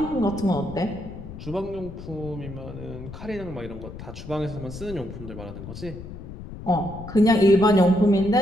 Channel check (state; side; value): noise; left; rumble, 12 dB below the sound